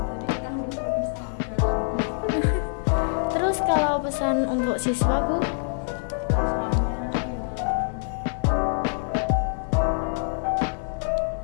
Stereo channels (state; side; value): silent; right; 62 dB below the other